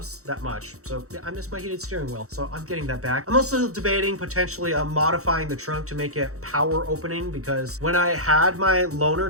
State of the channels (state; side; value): late; left; 0.65 ms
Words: that much. So yeah, I missed my heated steering wheel. So I'm getting that back. I'm also debating potentially modifying the trunk to make it power opening, because when I had my